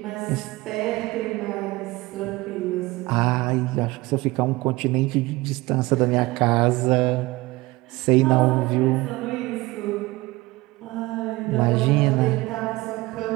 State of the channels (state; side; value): quieter; left; 20.9 dB